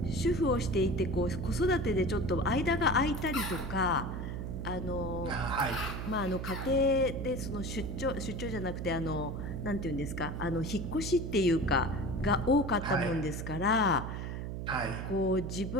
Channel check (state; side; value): noise; right; hum, 5 dB below the sound